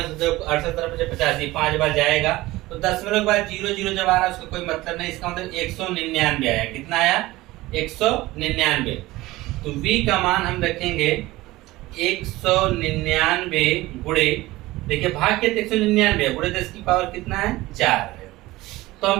85 5 बार जाएगा, तो दशमलव के बाद 0 0 जब आ रहा है उसका कोई मतलब नहीं, इसका मतलब 199 आया। कितना आया 199। तो V का मान हम रखेंगे 199 गुणे देखिए भाग के 199 गुणे 10 की पावर कितना है 4 है। तो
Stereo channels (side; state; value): left; quieter; 18.7 dB